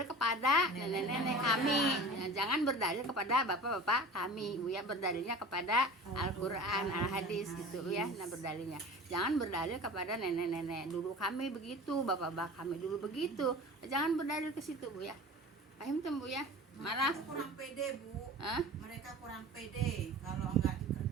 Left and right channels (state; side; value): normal; both; correlation 0.38